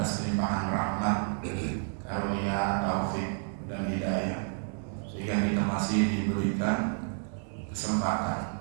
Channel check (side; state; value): left; silent; 58 dB below the other